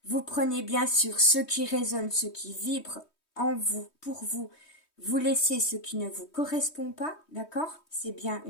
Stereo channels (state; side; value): late; right; 3.2 ms